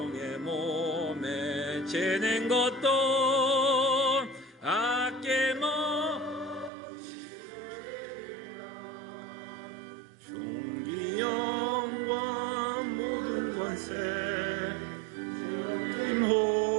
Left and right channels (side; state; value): left; drops out; at 6.7 s